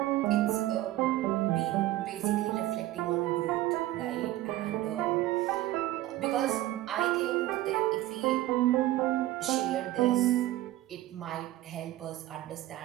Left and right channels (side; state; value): left; quieter; 15.6 dB